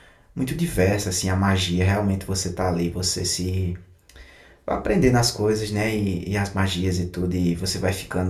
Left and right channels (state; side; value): identical; both; correlation 1.00